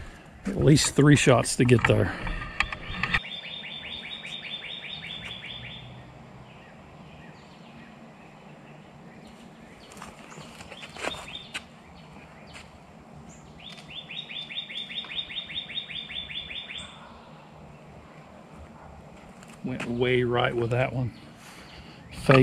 least 3 shots to get there. Went way right with that one.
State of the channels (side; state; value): both; identical; correlation 1.00